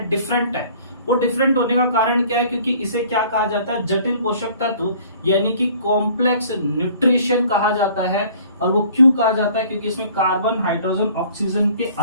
डिफरेंट है। वो डिफरेंट होने का कारण क्या है, क्योंकि इसे क्या कहा जाता है, जटिल पोषक तत्व, यानी कि कॉम्प्लेक्स न्यूट्रिशन कहा जाता है। और वो क्यों कहा जाता है, क्योंकि इसमें कार्बन, हाइड्रोजन, ऑक्सीजन के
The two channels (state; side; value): inverted; both; correlation -0.52